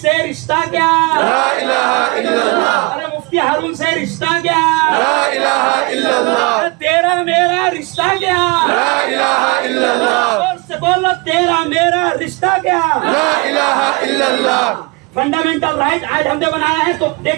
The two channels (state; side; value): quieter; left; 27.3 dB